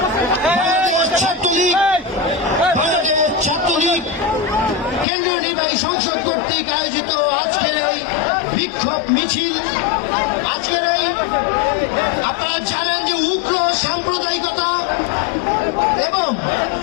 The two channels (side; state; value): right; drops out; at 5.1 s